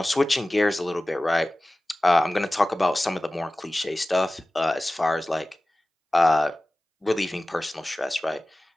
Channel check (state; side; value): normal; both; correlation 0.97